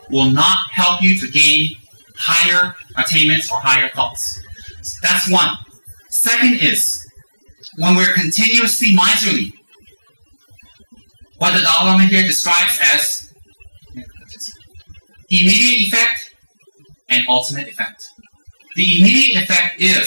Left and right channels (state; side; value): inverted; both; correlation -1.00